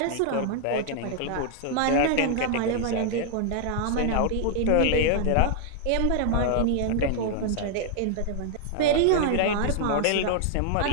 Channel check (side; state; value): both; different; correlation 0.00